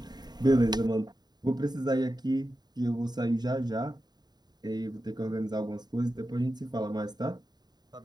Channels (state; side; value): late; left; 0.20 ms